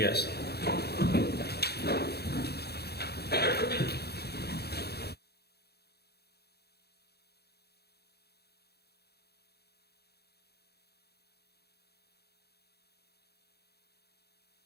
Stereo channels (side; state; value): right; late; 0.47 ms